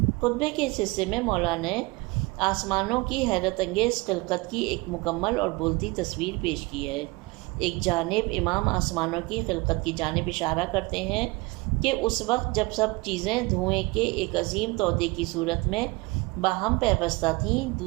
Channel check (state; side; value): quieter; left; 24.4 dB